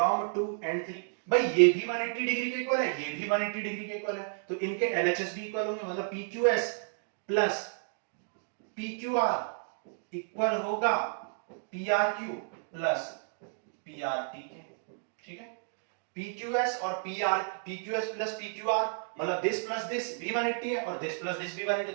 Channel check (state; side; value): silent; left; digital silence